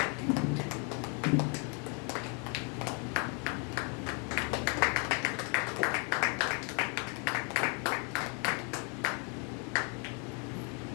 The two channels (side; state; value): right; quieter; 36.6 dB